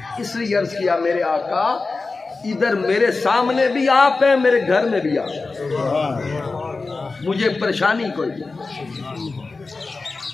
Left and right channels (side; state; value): right; quieter; 3.8 dB